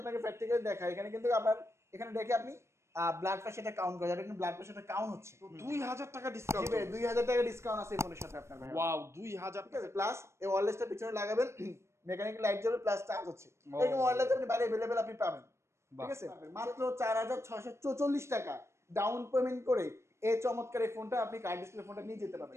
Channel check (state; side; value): late; left; 0.13 ms